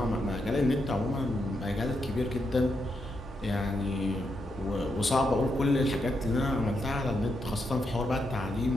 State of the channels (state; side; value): normal; both; correlation 0.82